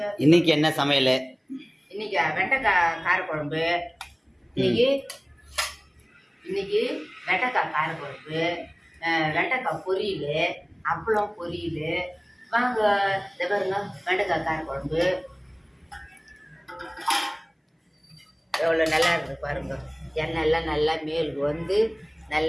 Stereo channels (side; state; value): both; identical; correlation 1.00